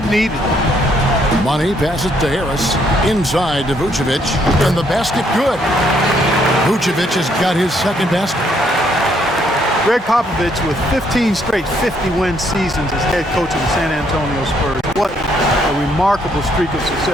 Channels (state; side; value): normal; both; correlation 0.70